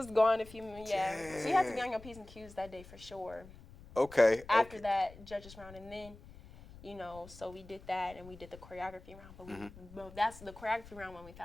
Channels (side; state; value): left; noise; rumble, 18 dB below the sound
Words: gone if you, So you had to be on your P's and Q's that day for sure. Okay. After that judges round, and then, you know, so we did that and we did the choreography round, but that's the choreography round when we